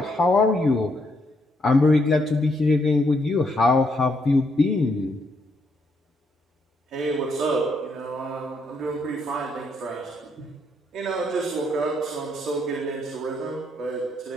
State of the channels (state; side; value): normal; both; correlation 0.75